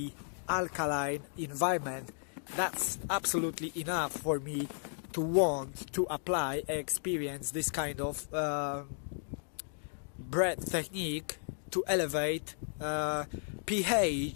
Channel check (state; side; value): silent; right; digital silence